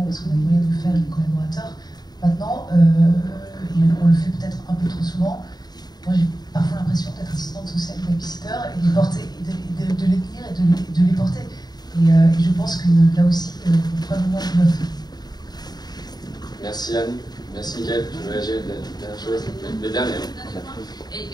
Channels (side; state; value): right; late; 0.20 ms